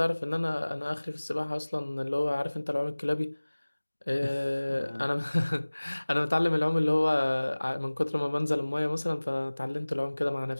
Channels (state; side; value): inverted; both; correlation -1.00